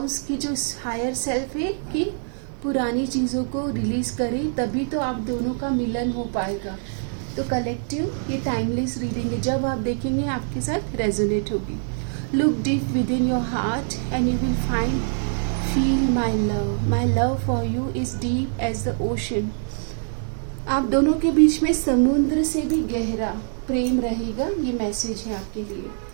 की जो हायर सेल्फ है, कि पुरानी चीज़ों को रिलीज करें, तभी तो आप दोनों का मिलन हो पाएगा। तो कलेक्टिव ये टाइमलेस रीडिंग है, जब आप देखेंगे आपके साथ रेजोनेट होगी। Look deep within your heart and you will find feel my love for you is deep as the ocean. आप दोनों के बीच में समुद्र से भी गहरा प्रेम रहेगा, ये मैसेज है आपके लिए।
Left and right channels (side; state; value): left; silent; digital silence